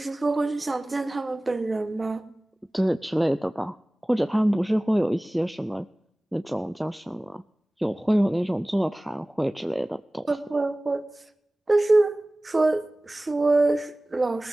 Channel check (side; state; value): both; normal; correlation 0.98